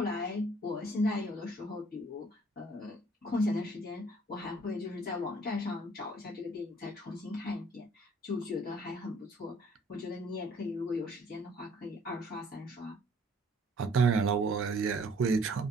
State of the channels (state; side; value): normal; both; correlation 0.58